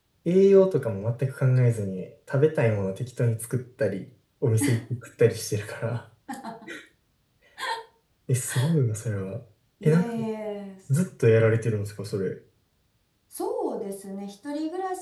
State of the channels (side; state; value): both; identical; correlation 1.00